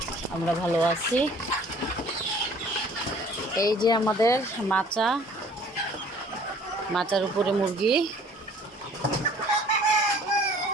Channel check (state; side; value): normal; both; correlation 0.52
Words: আমরা ভালো আছি। এই যে আমাদের মাচার উপরে মুরগি।